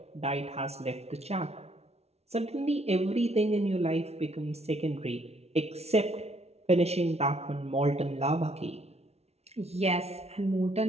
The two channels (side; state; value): left; late; 0.31 ms